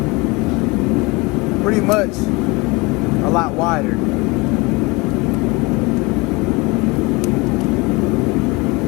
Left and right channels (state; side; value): quieter; right; 25.1 dB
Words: pretty much a lot wider.